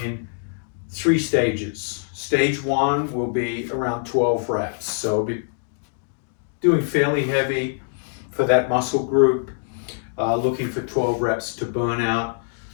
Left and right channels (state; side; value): silent; right; digital silence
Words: 3 stages. Stage 1 will be around 12 reps. So I'll be doing fairly heavy for that muscle group, looking for 12 reps to burn out,